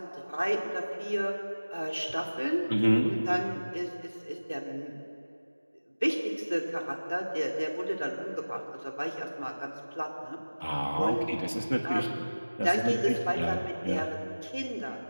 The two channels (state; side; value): inverted; both; correlation -1.00